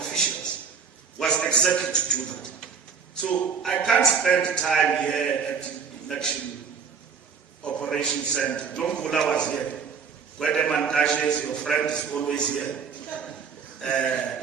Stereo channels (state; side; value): quieter; left; 6.1 dB